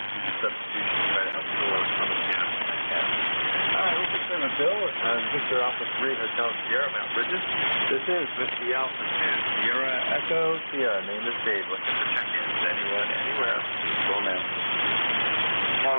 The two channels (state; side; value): inverted; both; correlation -1.00